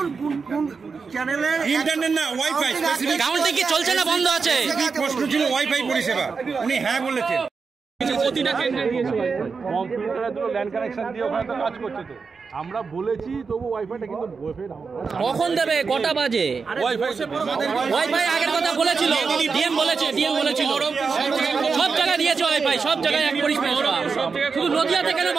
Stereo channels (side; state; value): left; quieter; 5.1 dB